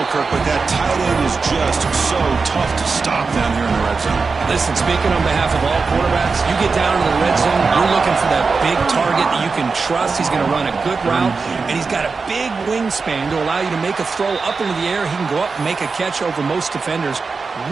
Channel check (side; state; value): left; quieter; 4.6 dB